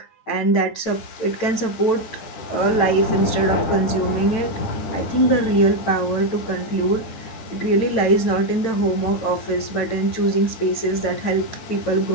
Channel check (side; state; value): right; late; 9.0 ms